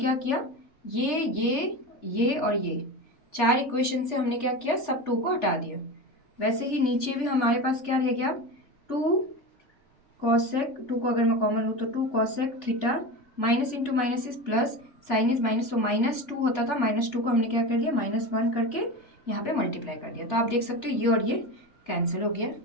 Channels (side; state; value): right; late; 3.4 ms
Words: किया, ये और ये 4 इक्वेशन से हमने क्या किया, सब 2 को हटा दिया। वैसे ही नीचे भी हमारे पास क्या रह गया, 2 cosec, 2 को अगर मैं कॉमन लूँ तो 2 cosec theta, minus into minus is plus, sign is minus, तो -2 होता था, -2 को हमने क्या कर दिया, -1 करके यहाँ पे मल्टीप्लाई कर दिया। तो आप देख सकते हो ये और ये कैंसिल हो गया।